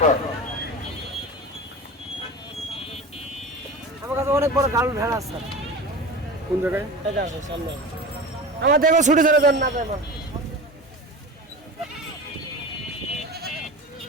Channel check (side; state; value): both; normal; correlation 0.32